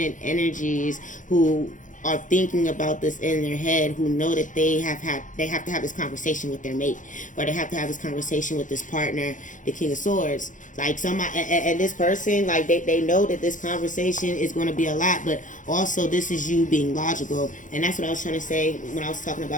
energies who are thinking about this in their head, who know that they have to have this conversation with their mate, or they have to have this conversation with this partner, the King of Swords. Like, somebody, and this person, like, they know that this conversation is going to be a lot, but also this is you being logical. And that's what I was trying to say when I was talking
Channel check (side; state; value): right; late; 0.37 ms